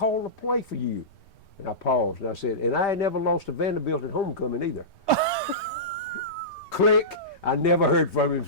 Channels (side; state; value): right; late; 3.2 ms